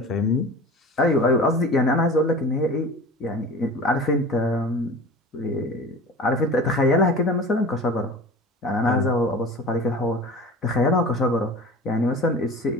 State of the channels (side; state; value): both; normal; correlation 0.37